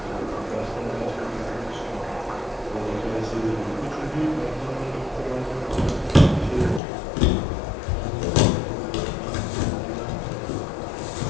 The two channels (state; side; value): drops out; right; at 6.8 s